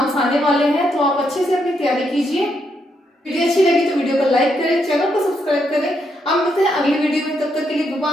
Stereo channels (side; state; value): both; normal; correlation 0.78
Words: आने वाले हैं, तो आप अच्छे से अपनी तैयारी कीजिए। वीडियो अच्छी लगी तो वीडियो को लाइक करें, चैनल को सब्सक्राइब करें। अब मिलते हैं अगली वीडियो में, तब तक के लिए